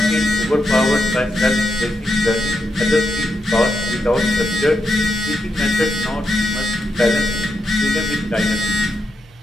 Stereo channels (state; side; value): normal; both; correlation 0.84